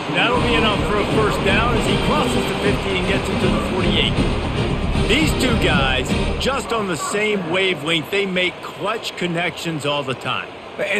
That'll be enough for a first down as he crosses the 50 and gets into the 48. These two guys, just on the same wavelength, they make clutch connections all the time.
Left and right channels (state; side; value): identical; both; correlation 1.00